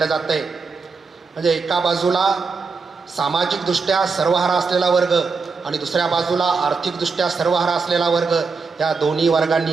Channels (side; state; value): left; quieter; 4.6 dB